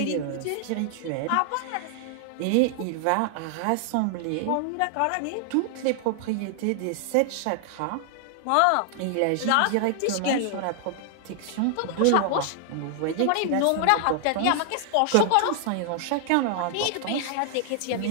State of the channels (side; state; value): both; different; correlation 0.00